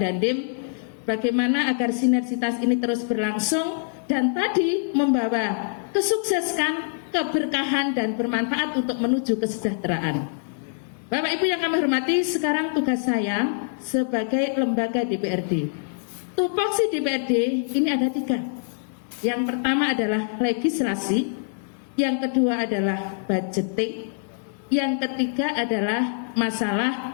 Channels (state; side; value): silent; right; 62 dB below the other